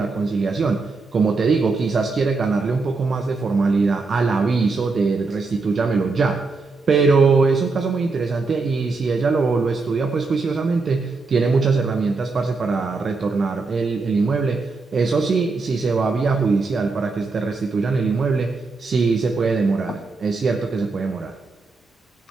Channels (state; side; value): quieter; left; 4.0 dB